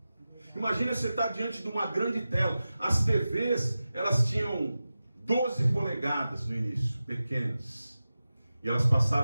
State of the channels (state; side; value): inverted; both; correlation -0.94